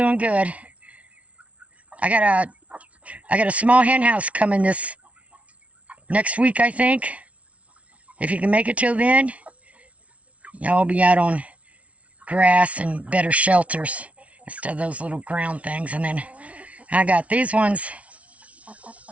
good. I got a small hen house coming this next week, I think. if you can make it till then, y'all will be out on grass and better shelters instead of those little ground things. And then I got these ones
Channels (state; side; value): late; left; 0.065 ms